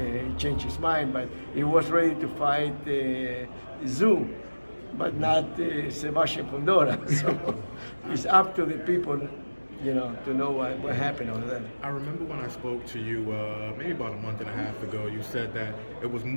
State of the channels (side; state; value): both; inverted; correlation -1.00